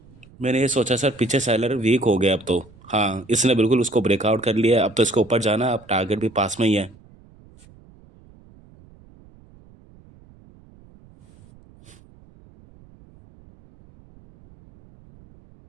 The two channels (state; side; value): noise; right; rumble, 26 dB below the sound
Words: मैंने ये सोचा सर, पीछे सेलर वीक हो गया अब तो। हाँ, इसने बिल्कुल उसको ब्रेकआउट कर लिया, अब तो इसको ऊपर जाना है, अब टारगेट भी पास में ही है।